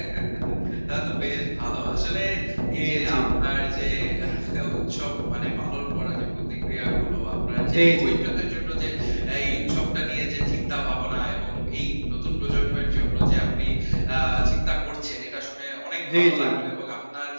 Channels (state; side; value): inverted; both; correlation -1.00